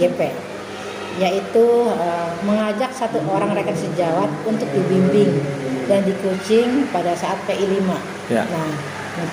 yaitu mengajak satu orang rekan sejawat untuk dibimbing dan di-coaching pada saat PI 5. Ya. Nah,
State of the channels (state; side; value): identical; both; correlation 1.00